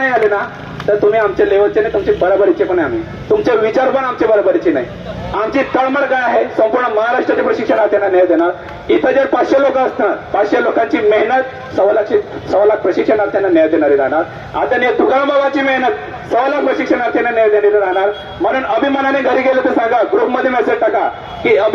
आले ना तर तुम्ही आमच्या लेवलचे नाही, तुमचे बरोबरीचे पण आहे आम्ही, तुमचे विचार पण आमचे बरोबरीचे नाही. आमची तळमळ काय आहे, संपूर्ण महाराष्ट्राच्या प्रशिक्षणार्थ्यांना न्याय देणार. इथं जर 500 लोक असणार, 500 लोकांची मेहनत 1.25 लाख प्रशिक्षणार्थ्यांना न्याय देणारी राहणार. आदरणीय तुकाराम बाबाची मेहनत 1.25 लाख प्रशिक्षणार्थ्यांना न्याय देणारी राहणार. म्हणून अभिमानाने घरी गेलं तर सांगा, ग्रुपमध्ये मेसेज टाका की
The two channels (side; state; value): both; identical; correlation 1.00